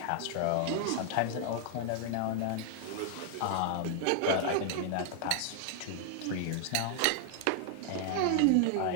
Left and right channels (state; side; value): different; both; correlation 0.00